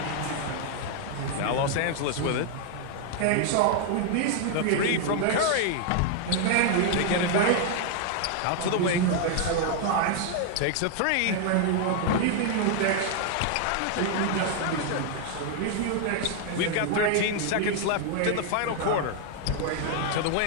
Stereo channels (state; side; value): different; both; correlation 0.00